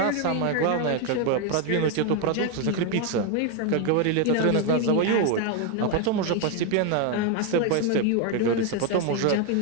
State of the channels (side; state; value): both; different; correlation 0.01